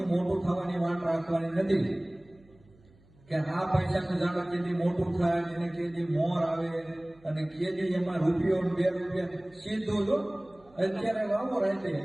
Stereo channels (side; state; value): right; noise; hum, 28 dB below the sound